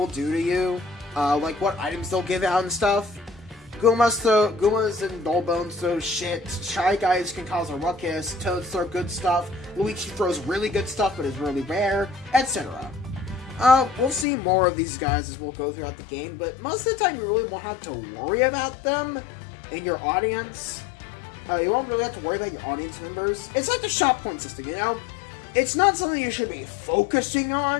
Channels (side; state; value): right; drops out; at 14.2 s